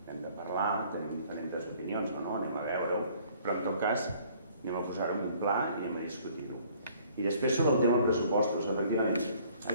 Hem de parlar, tenim diferents opinions o no, anem a veure-ho, però en tot cas anem a posar-ho en un pla i anem a discutir-ho. I després sobre el tema del pressupostos, efectivament.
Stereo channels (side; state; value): both; inverted; correlation -0.58